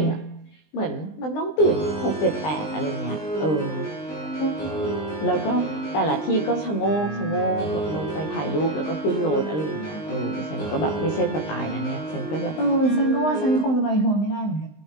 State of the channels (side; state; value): right; late; 19 ms